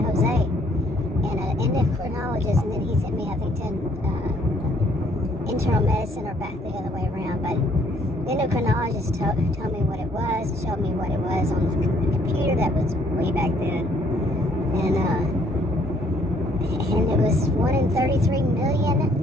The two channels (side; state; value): both; normal; correlation 0.64